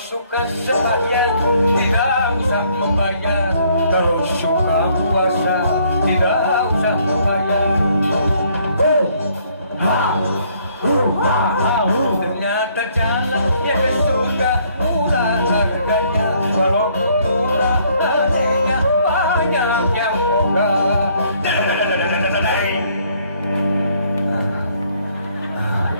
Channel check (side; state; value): both; inverted; correlation -0.65